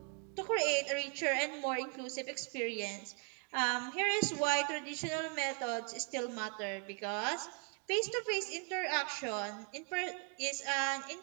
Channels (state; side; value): quieter; left; 33.3 dB